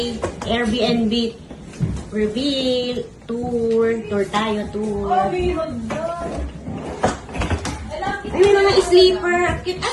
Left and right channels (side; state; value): both; identical; correlation 1.00